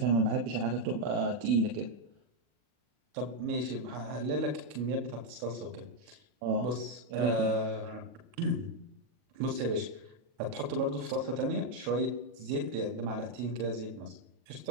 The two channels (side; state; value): left; late; 41 ms